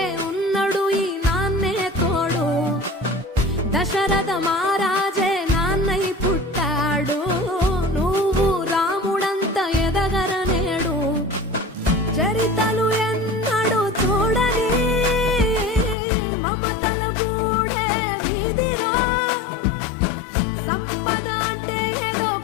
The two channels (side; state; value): right; drops out; at 16.0 s